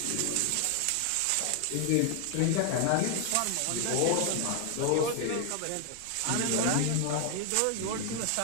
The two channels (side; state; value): both; different; correlation 0.00